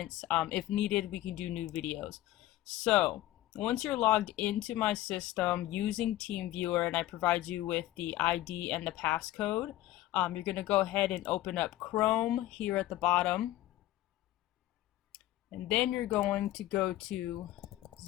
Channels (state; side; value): quieter; right; 15.2 dB